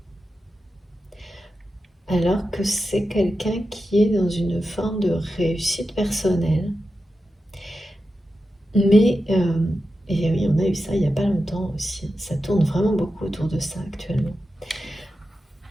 Alors que c'est quelqu'un qui est dans une forme de réussite personnelle. Mais, et oui, on a eu ça il n'y a pas longtemps aussi. Ça tourne vraiment beaucoup autour de ça actuellement.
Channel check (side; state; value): both; normal; correlation 0.91